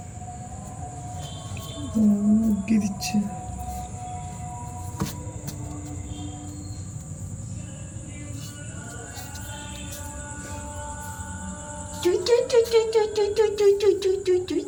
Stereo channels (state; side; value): identical; both; correlation 1.00